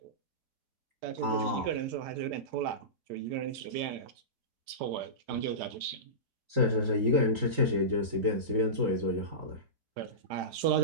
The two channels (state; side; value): late; left; 3.8 ms